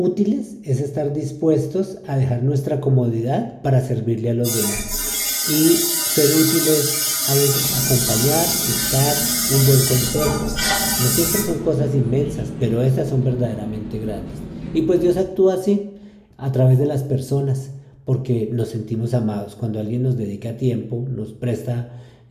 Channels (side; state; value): both; identical; correlation 1.00